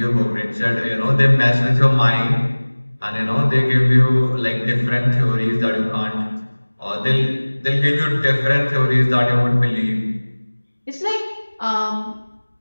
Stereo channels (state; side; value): inverted; both; correlation -1.00